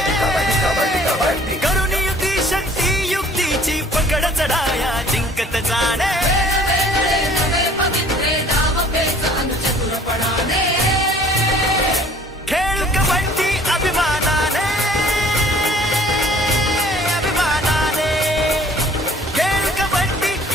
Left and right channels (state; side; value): normal; both; correlation 0.54